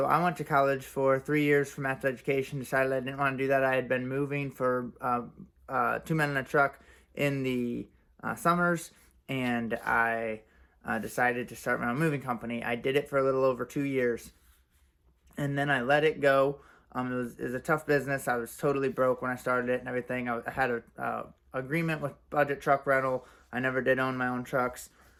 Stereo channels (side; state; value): both; identical; correlation 1.00